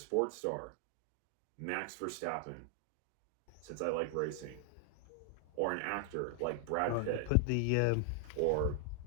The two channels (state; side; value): different; both; correlation 0.00